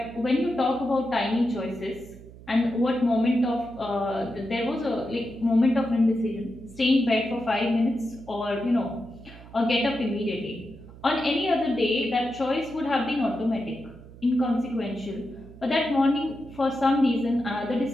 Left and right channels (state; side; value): noise; right; hum, 18 dB below the sound